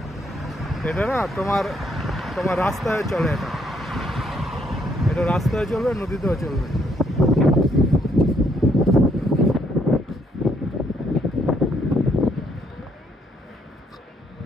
এটা না তোমার তোমার রাস্তায় চলে। এটা রাস্তায় চলবে, নদীতেও চলবে।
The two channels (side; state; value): both; normal; correlation 0.70